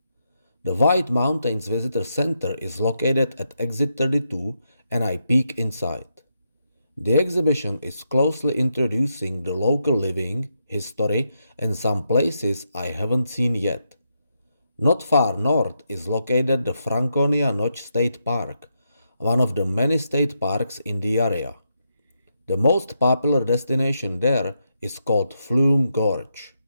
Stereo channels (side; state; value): both; inverted; correlation -0.82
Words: The White Mountains Visitor Center is located at exit 32 and I peek inside. The exhibition is closely introducing the local living, history, and some places I haven't seen yet. Not far north is located the Franconia Notch State Park, one of the many state parks in the area. The most popular destination there is called Flume Gorge.